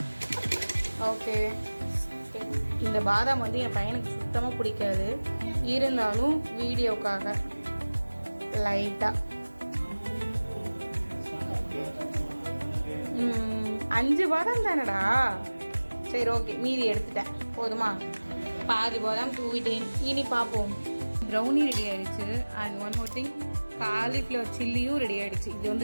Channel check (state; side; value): inverted; both; correlation -1.00